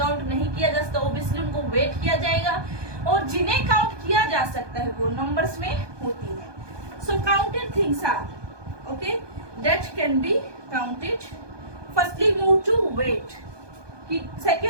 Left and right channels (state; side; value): late; left; 1.2 ms